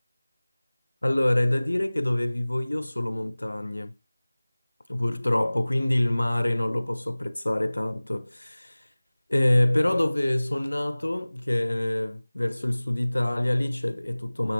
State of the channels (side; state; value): both; inverted; correlation -1.00